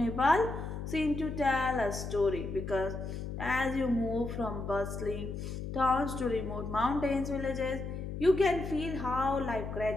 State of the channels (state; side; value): noise; left; hum, 6 dB below the sound